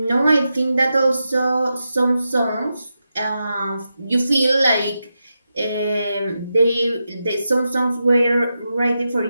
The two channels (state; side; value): inverted; both; correlation -0.88